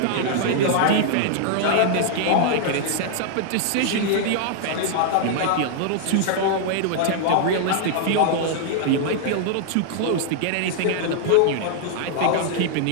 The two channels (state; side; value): different; both; correlation -0.01